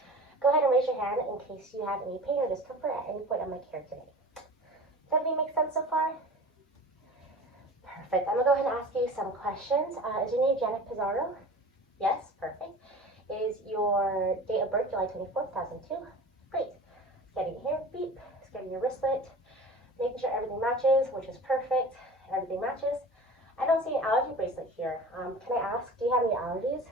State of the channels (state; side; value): normal; both; correlation 0.38